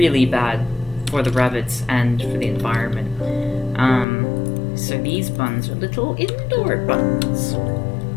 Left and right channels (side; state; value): right; drops out; at 4.0 s